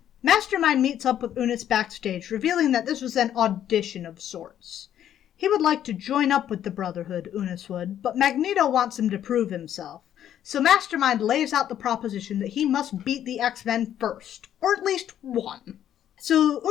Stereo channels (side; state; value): right; quieter; 10.6 dB